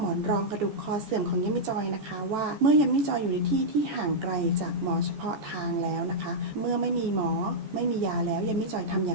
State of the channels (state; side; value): late; left; 14 ms